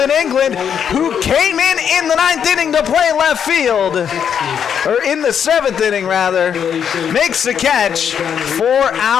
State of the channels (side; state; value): right; quieter; 8.0 dB